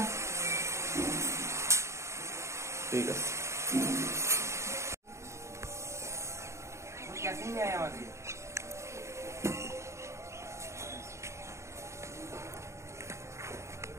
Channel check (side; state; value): left; late; 0.14 ms